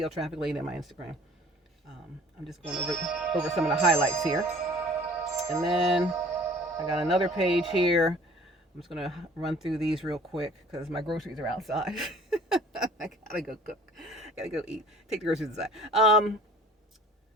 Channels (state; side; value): normal; both; correlation 0.49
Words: Traffic Lady, and my Instagram. I'm just going over some of the highlights here. And then I got another page here. I'm just going to run through these real quick because my groceries are outside. I gotta go cook. I gotta go eat. Take the groceries inside.